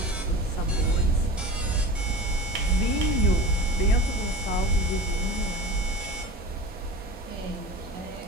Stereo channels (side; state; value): both; normal; correlation 0.33